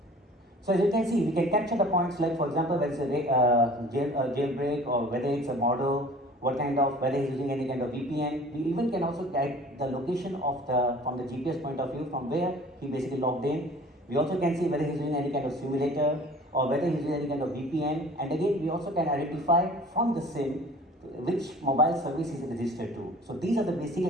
So as you can see, we can capture the points like, for example, whether it's a jailbreak or whether it's a model, what kind of, whether he's using any kind of VPN. We even can also guide the location of from the GPS point of view, from where he basically logged in. We also can see whether he's using any kind of simulator or whether he's using any kind of VPN. And again, we also can identify from the SIM which mobile service is registered to. So these are the basic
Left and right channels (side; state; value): both; normal; correlation 0.47